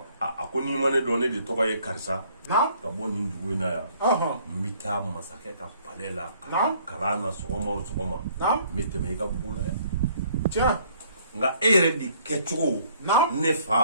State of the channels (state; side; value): inverted; both; correlation -0.61